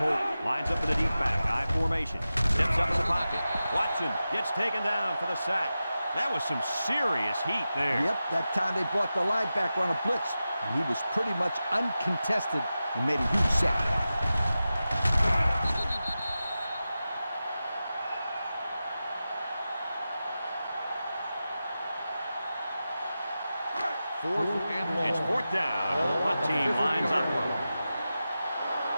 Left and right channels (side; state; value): both; inverted; correlation -0.93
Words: Holt lines up in the deep back. I formation. Steps up in the pocket. Watson gets taken down for the sack. That was some serious heat there. Yep, that time they brought the linebacker on a blitz, and he was pretty much uncontested and made a huge sack. Fourth and long. It's fourth down. The punt team lines up.